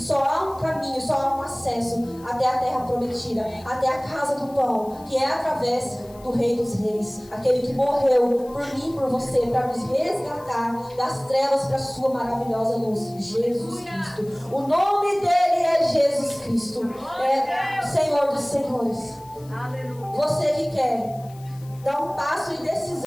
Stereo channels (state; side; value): noise; left; hiss, 25 dB below the sound